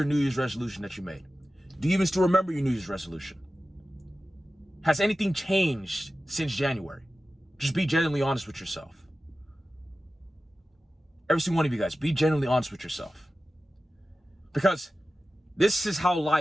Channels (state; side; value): normal; both; correlation 0.94